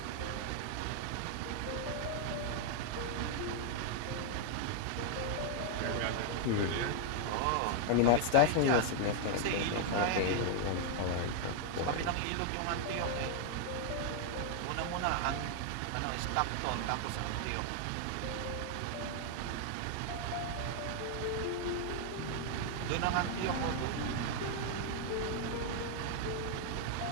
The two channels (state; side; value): different; both; correlation 0.00